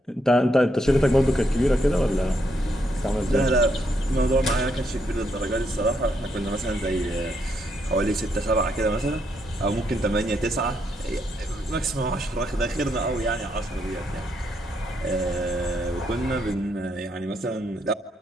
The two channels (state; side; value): normal; both; correlation 0.77